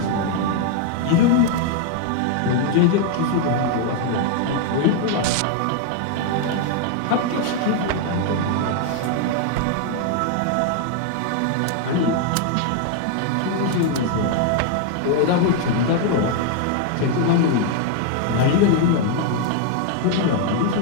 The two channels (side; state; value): both; different; correlation 0.00